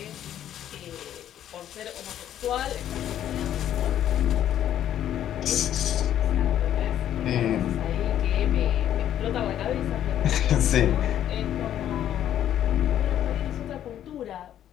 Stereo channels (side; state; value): right; quieter; 11.0 dB